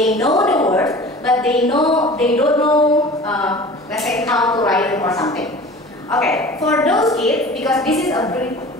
know the words, but they don't know, let's say, how to write it or something. Okay, for those kids, because this is a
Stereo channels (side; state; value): both; normal; correlation 0.41